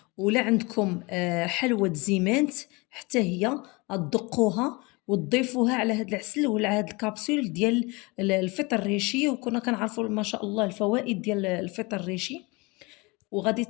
ولا عندكم حلوة زيمانت حتى هي غتدقوها وتضيفوها على هاد العسل وعلى هاد الكابسول ديال الفطر الريشي. وكنا كنعرفوا ما شاء الله الفوائد ديال الفطر الريشي. وغادي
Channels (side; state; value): right; quieter; 26.1 dB